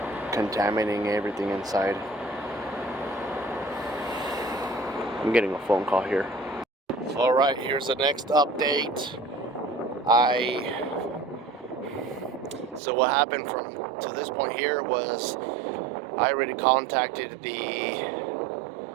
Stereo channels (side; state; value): left; drops out; at 12.8 s